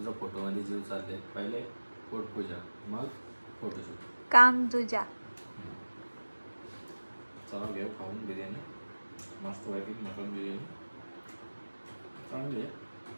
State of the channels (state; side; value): inverted; both; correlation -1.00